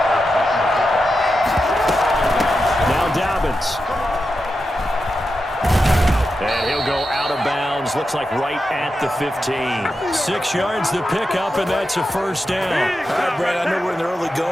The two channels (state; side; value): normal; both; correlation 0.89